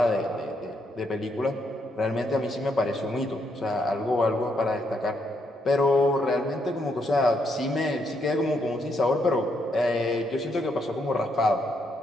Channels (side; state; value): both; normal; correlation 0.76